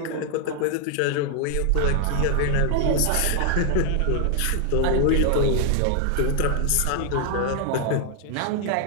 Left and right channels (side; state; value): both; different; correlation 0.00